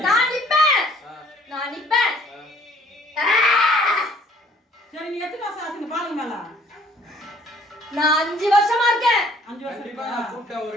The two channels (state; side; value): normal; both; correlation 0.58